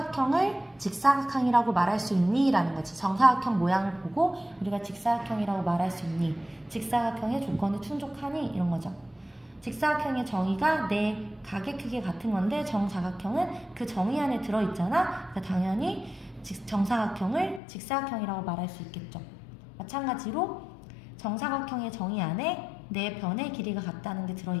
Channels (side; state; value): right; drops out; at 17.6 s